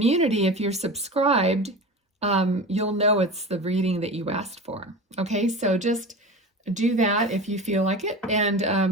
If you're subscribed, you'll know it's the reading that you asked for. Okay, so just do that if you feel like it, and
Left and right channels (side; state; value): both; normal; correlation 0.31